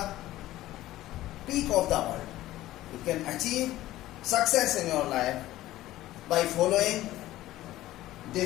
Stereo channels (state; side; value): quieter; right; 15.5 dB